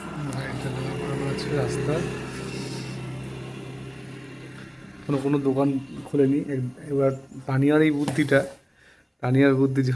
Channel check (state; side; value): identical; both; correlation 1.00